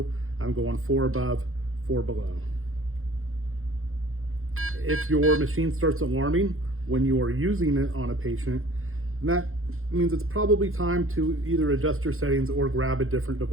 I'm going 4 above, 4 below. If your machine starts alarming when you are using it on a patient, that means it's probably time to either adjust your settings or grab a different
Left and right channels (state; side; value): late; left; 0.61 ms